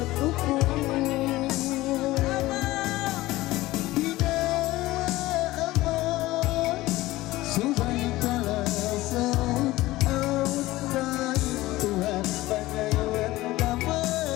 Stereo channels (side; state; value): right; quieter; 17.9 dB